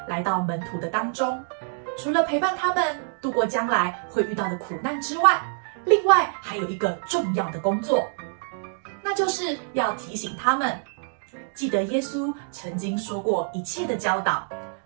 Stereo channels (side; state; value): left; silent; 61 dB below the other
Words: 来到门徒的当中，除了陪伴他们度过将来会遇到的苦难之外，另外还有一个重要的工作，那就是要提醒他们记得耶稣曾经说过一切的教导，